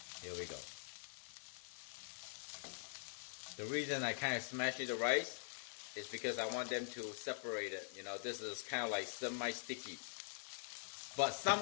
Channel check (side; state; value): right; silent; digital silence